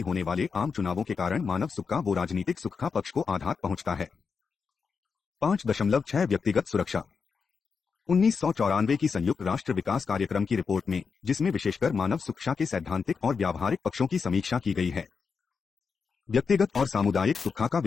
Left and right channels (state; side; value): quieter; right; 5.5 dB